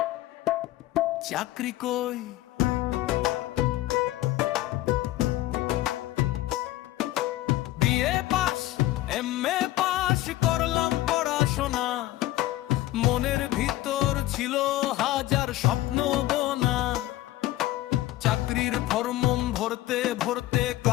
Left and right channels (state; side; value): quieter; right; 16.1 dB